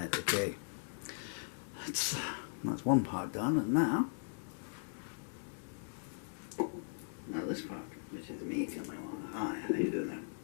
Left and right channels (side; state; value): right; silent; digital silence